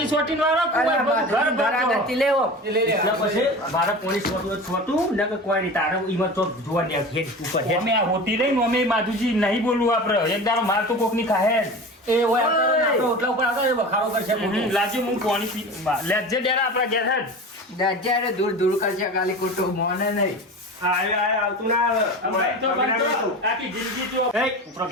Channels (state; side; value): normal; both; correlation 0.33